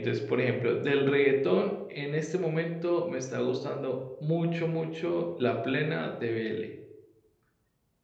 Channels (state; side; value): identical; both; correlation 1.00